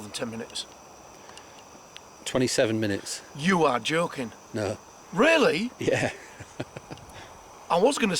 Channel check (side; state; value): both; identical; correlation 1.00